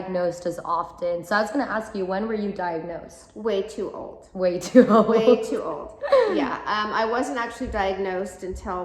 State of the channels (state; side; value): identical; both; correlation 1.00